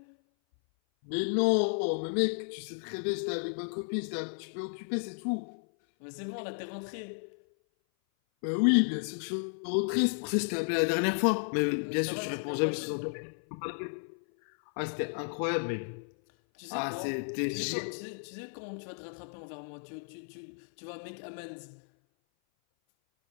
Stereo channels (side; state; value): right; silent; 56 dB below the other